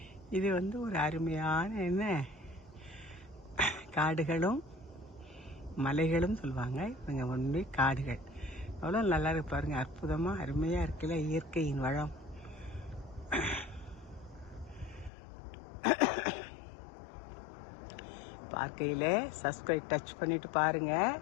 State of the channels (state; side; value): drops out; right; at 15.1 s